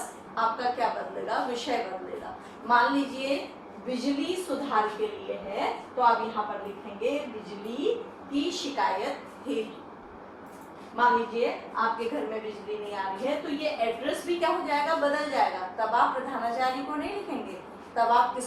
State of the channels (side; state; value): both; identical; correlation 1.00